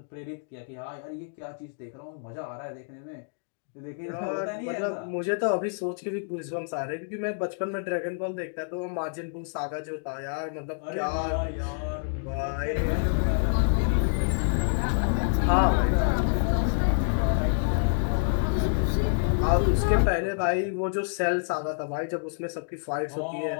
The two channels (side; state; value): right; silent; digital silence